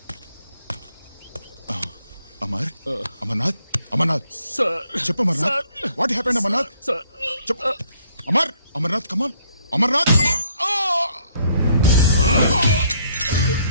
అమర్నాథ్, అమర్నాథ్ చెప్పు. Amarnath, what happened? అమర్నాథ్ చెప్పు. అమర్నాథ్ కమాన్, అమర్నాథ్.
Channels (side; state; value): both; inverted; correlation -0.66